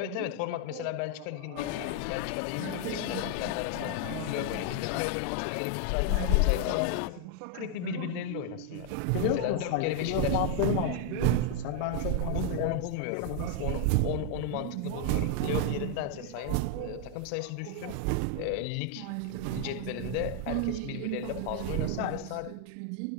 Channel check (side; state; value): both; different; correlation 0.00